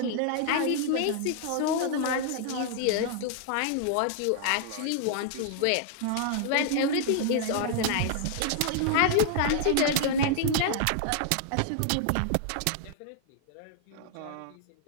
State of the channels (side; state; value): both; different; correlation -0.01